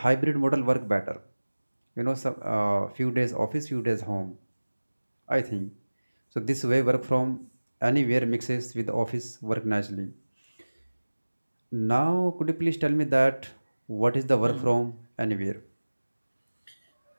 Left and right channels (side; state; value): both; inverted; correlation -1.00